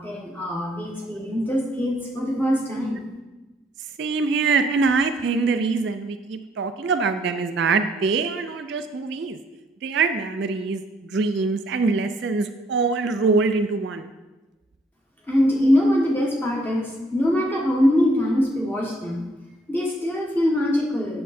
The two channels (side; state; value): both; normal; correlation 0.67